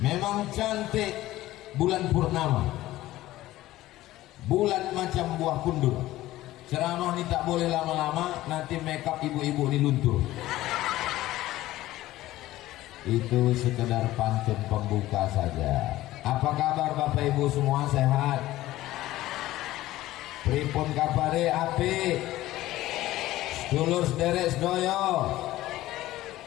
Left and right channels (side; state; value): right; quieter; 16.0 dB